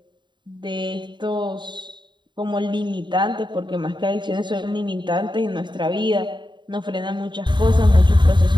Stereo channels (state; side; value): late; left; 0.22 ms